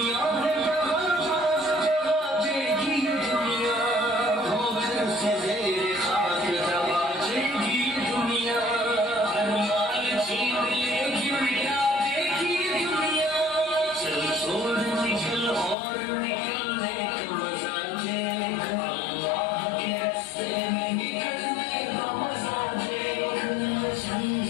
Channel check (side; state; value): right; drops out; at 15.8 s